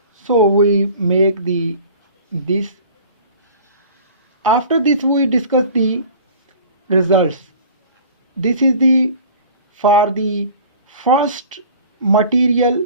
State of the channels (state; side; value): inverted; both; correlation -0.44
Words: So we make this. After this we discuss the results. This is for the first material,